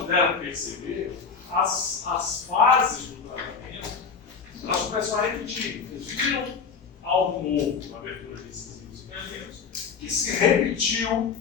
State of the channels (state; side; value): quieter; right; 5.8 dB